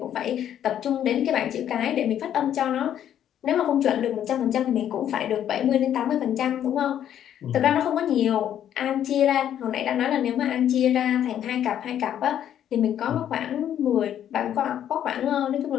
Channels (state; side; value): quieter; right; 10.3 dB